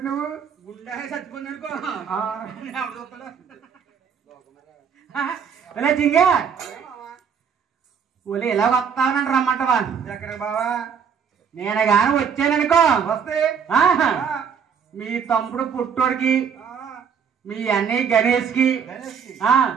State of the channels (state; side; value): quieter; left; 6.9 dB